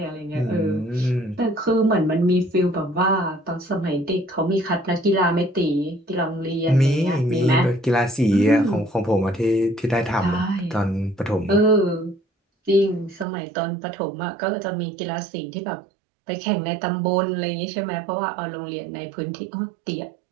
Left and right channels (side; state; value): left; drops out; at 13.2 s